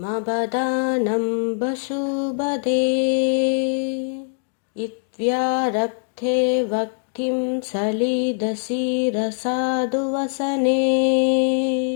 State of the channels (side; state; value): right; silent; digital silence